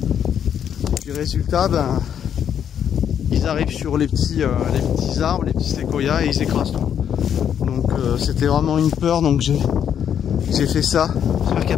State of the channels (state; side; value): quieter; right; 8.8 dB